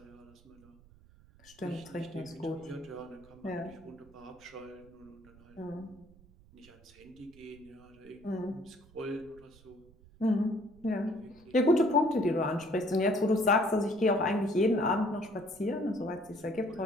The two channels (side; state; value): right; noise; rumble, 25 dB below the sound